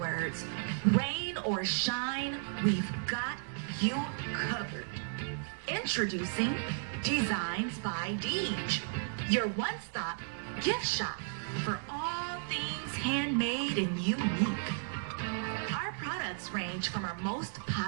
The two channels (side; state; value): left; silent; digital silence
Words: rain or shine, we've got you covered. Introducing Designs by Deej, your one-stop gift shop for all things handmade and unique. Our products range from our most